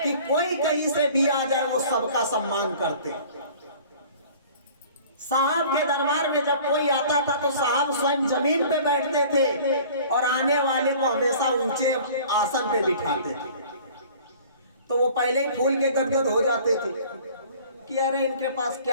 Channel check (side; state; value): both; inverted; correlation -0.48